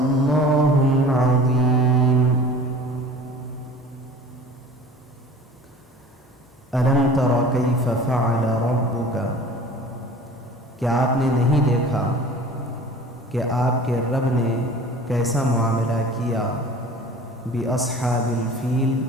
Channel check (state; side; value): normal; both; correlation 0.43